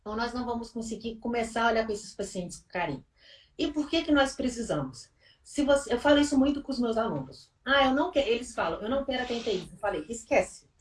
ou nós não vamos conseguir começar a olhar para esses pacientes com carinho. E por que que nós precisamos? Se você, eu falo isso muito com os meus alunos. Ah, eu não quero, eles falam, eu não quero atender isso. Eu falei, esquece.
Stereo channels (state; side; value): identical; both; correlation 1.00